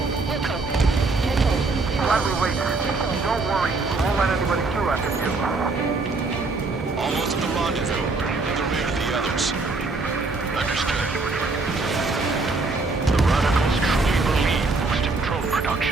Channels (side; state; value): left; quieter; 3.7 dB